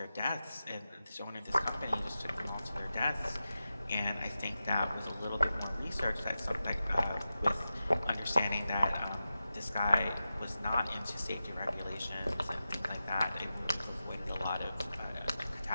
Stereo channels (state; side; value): inverted; both; correlation -0.92